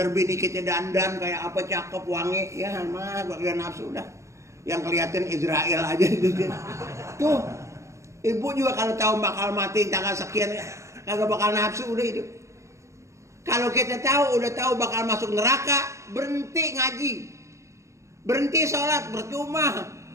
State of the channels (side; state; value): left; late; 0.14 ms